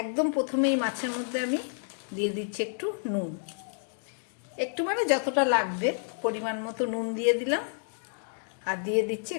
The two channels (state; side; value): silent; right; digital silence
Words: প্রথমে এই মাছের মধ্যে আমি দিয়ে দিচ্ছি একটু নুন, একটু মানে যতটা লাগবে পরিমাণ মতো নুন দিয়ে দিলাম। আর দিয়ে দিচ্ছি